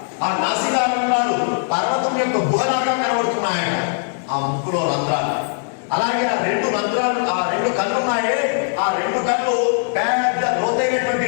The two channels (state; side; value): silent; right; 66 dB below the other